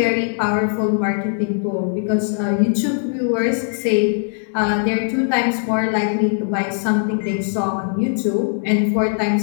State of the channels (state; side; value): silent; right; 61 dB below the other